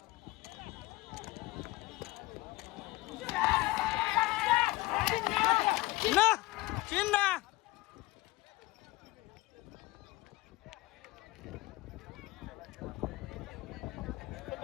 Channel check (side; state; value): right; quieter; 20.1 dB